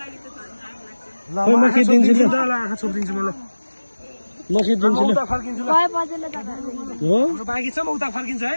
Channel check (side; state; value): both; inverted; correlation -1.00